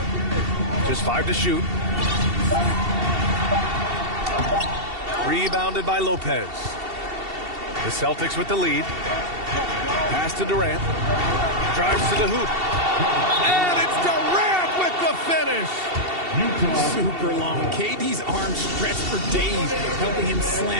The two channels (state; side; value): late; left; 2.7 ms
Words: Just 5 to shoot. Rebounded by Lopez. The Celtics with the lead. Pass to Durant. Drives to the hoop. And it's Durant with the finish. Super long. KD's arms stretched for days, helping him